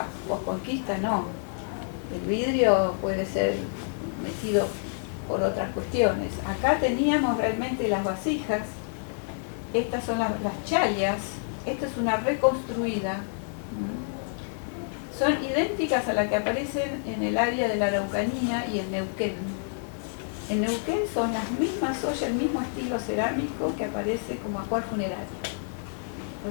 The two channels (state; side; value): silent; right; 58 dB below the other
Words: posconquista, no. El vidrio puede ser metido por otras cuestiones. Acá teníamos realmente las vasijas, estas son las chalias, esta es una reconstruida. Son idénticas a las que aparecen en el área de la Araucanía y en Neuquén. En Neuquén son las mismas ollas, el mismo estilo cerámico que aparece como ajuar funerario.